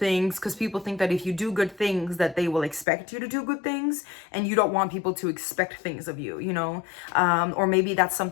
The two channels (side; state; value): right; drops out; at 2.9 s